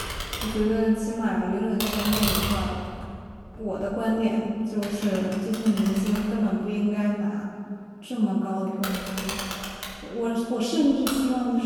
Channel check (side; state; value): both; identical; correlation 1.00